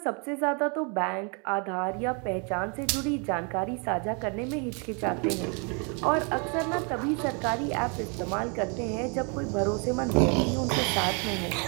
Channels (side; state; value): left; quieter; 35.6 dB